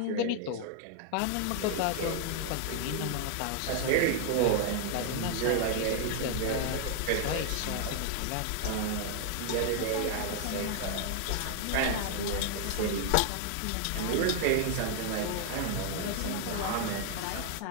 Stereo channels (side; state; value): both; different; correlation 0.00